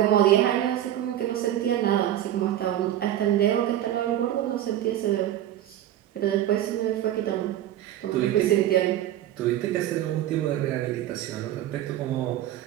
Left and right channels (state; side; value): quieter; left; 12.3 dB